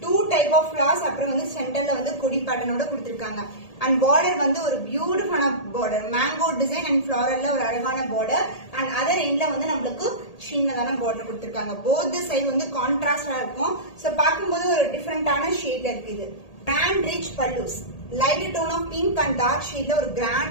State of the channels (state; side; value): late; right; 1.8 ms